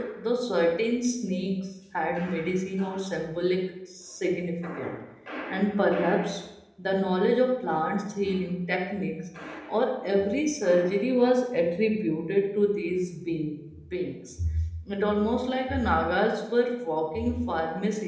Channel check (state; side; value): identical; both; correlation 1.00